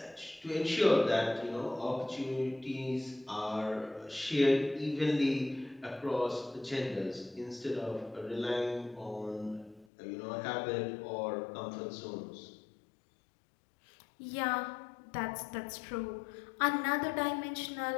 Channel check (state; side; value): drops out; right; at 9.9 s